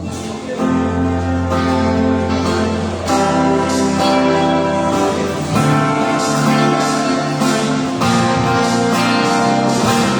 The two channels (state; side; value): identical; both; correlation 1.00